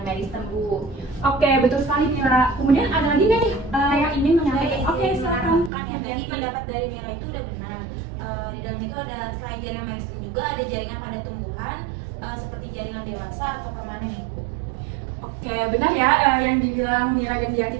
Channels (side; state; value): left; drops out; at 5.7 s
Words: meristem Bu. Oke, betul sekali Mira. Kemudian ada lagi nggak nih yang ingin menyampaikan? Oke, silakan. Kan ya, tadi pendapat dari Mira itu udah benar. Di dalam itu ada selain jaringan meristem juga ada jaringan pada tumbuhan seperti jaringan dewasa atau permanen Ibu. Oke, benar ya yang dibilang Mira dan